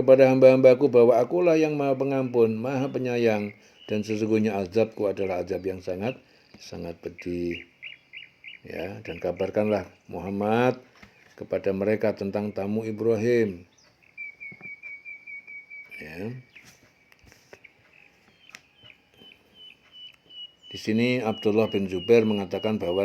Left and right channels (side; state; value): both; identical; correlation 1.00